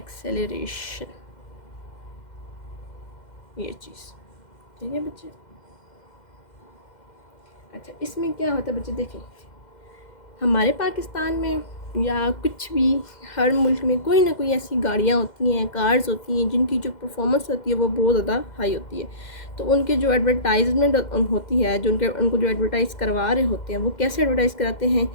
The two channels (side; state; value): right; late; 2.1 ms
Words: ये चीज़ ठीक है बच्चे। अच्छा, इसमें क्या होता है बच्चे, देखें हमारे पाकिस्तान में या कुछ भी हर मुल्क में कोई ना कोई ऐसी गाड़ियाँ होती हैं, कार्स होती हैं जिनकी जो परफॉर्मेंस होती है वो बहुत ज़्यादा हाई होती है। तो उनके जो एडवर्टाइजमेंट होती है, जो उनको जो एडवर्टाइज़ करवा रहे होते हैं, वो कैसे एडवर्टाइज़ कराते हैं